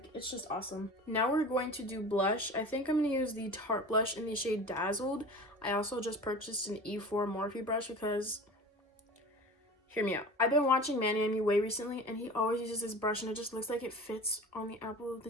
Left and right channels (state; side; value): normal; both; correlation 0.37